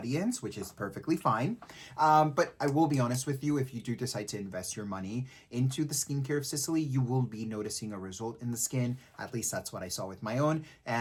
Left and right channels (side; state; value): both; identical; correlation 1.00